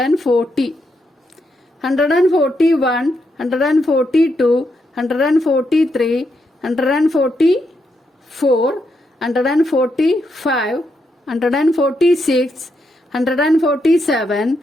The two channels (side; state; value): both; normal; correlation 0.81